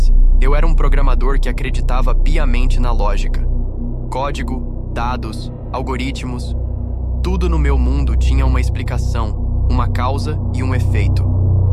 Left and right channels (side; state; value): both; identical; correlation 1.00